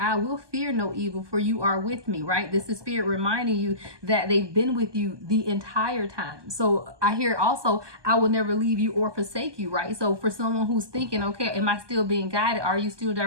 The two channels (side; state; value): left; late; 1.2 ms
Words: will fear no evil, for you are with me, right? This is spirit reminding you that they've been with you the entire time. So I hear also, I will never leave you or forsake you, right? So for someone who's thinking, okay, am I still being guided? Are you still